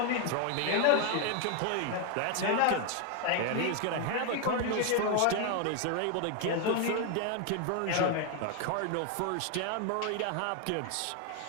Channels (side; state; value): both; different; correlation 0.01